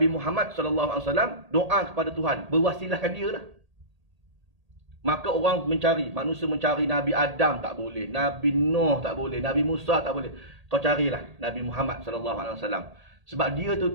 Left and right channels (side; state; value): left; late; 1.8 ms